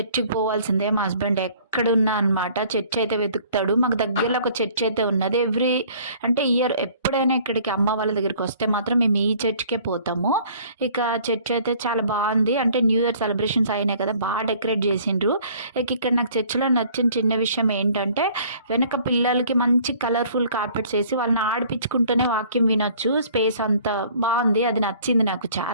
పోవాల్సిందే. మా హస్బెండ్ ఎక్కడున్నా అనమాట చర్చ్ అయితే వెతుకుతాడు. మాకు దగ్గరలో ఒక చర్చ్ అయితే ఉన్నది. అంటే ఇయర్ ఎప్పుడైనా ఇక్కడికి అమ్మ వాళ్ళ దగ్గరికి వస్తే మాత్రం మేము ఈ చర్చ్‌కే పోతాము. ఇక చర్చ్ అయితే చాలా బాగుంది. అంటే న్యూ ఇయర్ సెలబ్రేషన్స్ అయినాయి కదా! బాగా డెకరేట్ చేసిండ్రు. ఇక ఇక్కడ నాకు చర్చ్‌లో నచ్చిన చిన్న విషయం ఏంటంటే వెనక పిల్లలకి మంచి కలర్‌ఫుల్ కార్పెట్స్ ఏసి వాళ్ళని ఆడిపించుకుంటూనే వాక్యం వినొచ్చు. స్పేస్ అంతా బాగుంది. అది నచ్చింది నాకు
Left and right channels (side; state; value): both; inverted; correlation -0.55